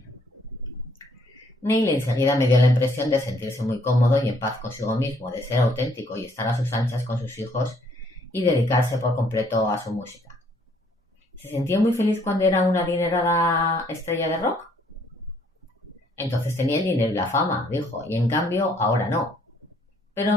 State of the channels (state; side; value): normal; both; correlation 0.65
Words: Neil enseguida me dio la impresión de sentirse muy cómodo y en paz consigo mismo, de ser auténtico y estar a sus anchas con sus hijos y dedicarse por completo a su música. ¿Se sentía muy feliz cuando era una adinerada estrella de rock? Entonces tenía el dinero y la fama, dijo, y en cambio ahora no.